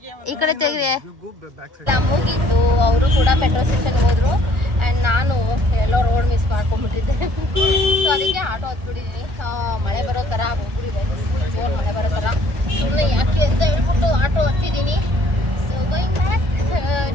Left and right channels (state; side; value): late; left; 1.4 ms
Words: ಈ ಕಡೆ ತೆಗೆದೆ. You go back side. ಎಲ್ಲ ಮುಗಿದ್ದು ಅವರು ಕೂಡ ಮೆಟ್ರೋ ಸ್ಟೇಷನ್ಗೆ ಹೋದ್ರು. ಆ್ಯಂಡ್ ನಾನು ಎಲ್ಲೋ ರೋಡ್ ಮಿಸ್ ಮಾಡ್ಕೊಂಡ್ಬಿಟ್ಟಿದ್ದೆ. ಸೊ ಅದಕ್ಕೆ ಆಟೋ ಹತ್ಬಿಟ್ಟಿದ್ದೀನಿ. ಮಳೆ ಬರೋ ಥರ ಹೋಗ್ಬಿಟ್ಟಿದೆ, ಫುಲ್ ಜೋರು ಮಳೆ ಬರೋ ಥರ. ಸುಮ್ಮನೆ ಯಾಕೆ ಅಂತ ಹೇಳ್ಬಿಟ್ಟು ಆಟೋ ಹತ್ತಿದ್ದೀನಿ. ಸೊ ಗೋಯಿಂಗ್ ಬ್ಯಾಕ್